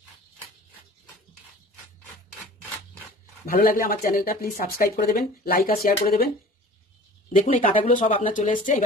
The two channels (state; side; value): normal; both; correlation 0.44